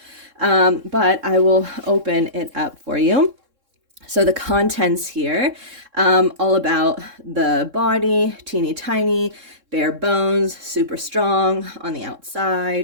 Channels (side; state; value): left; late; 3.7 ms